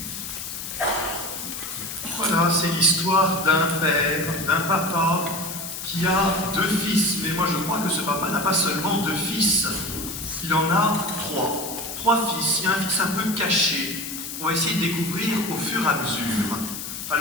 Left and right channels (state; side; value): noise; left; hiss, 7 dB below the sound